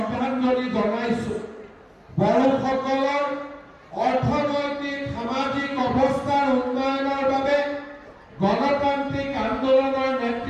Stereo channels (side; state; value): both; identical; correlation 1.00